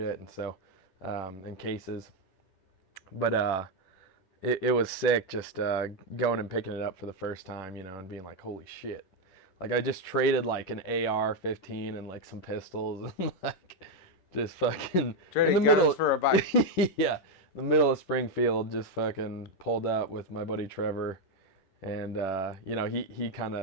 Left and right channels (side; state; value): right; late; 10 ms